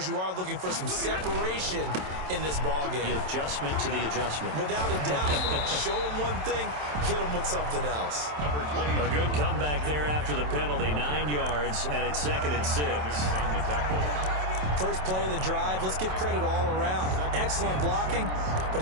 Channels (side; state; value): left; late; 27 ms